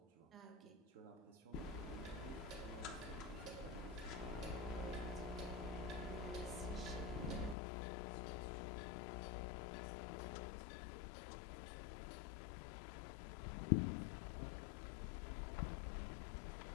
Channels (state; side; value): drops out; right; at 7.6 s